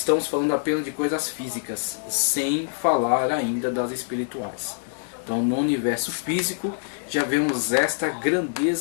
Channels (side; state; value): right; silent; digital silence